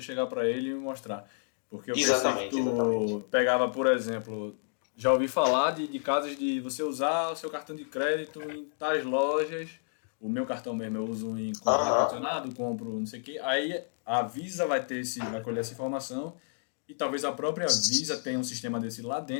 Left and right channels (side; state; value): right; silent; digital silence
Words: chegar para ele e mostrar. Porque eu pensei que Exatamente, exatamente. tu pegava, por exemplo, já ouvi falar de casos de você usar o seu cartão de crédito em tais lojas. O meu cartão mesmo eu uso em comprar Aham. ar-condicionado, compro não sei o quê. Aí a Visa vai colher essa informação e talvez a própria Visa tenha um sistema desse lá